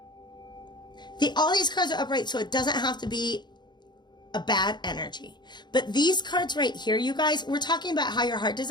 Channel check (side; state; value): right; late; 0.21 ms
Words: All these cards are upright, so it doesn't have to be a bad energy. But these cards right here, you guys, we're talking about how your heart